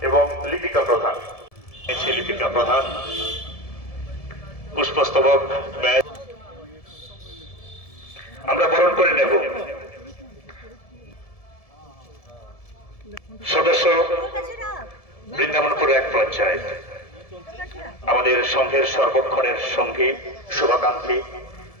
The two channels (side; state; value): right; late; 1.7 ms